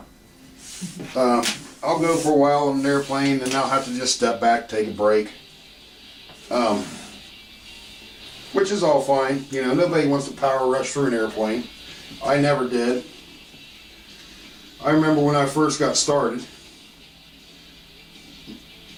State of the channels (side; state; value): both; identical; correlation 1.00